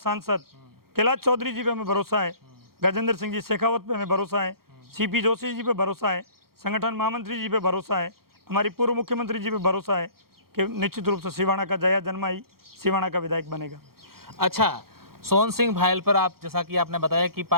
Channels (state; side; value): late; left; 0.94 ms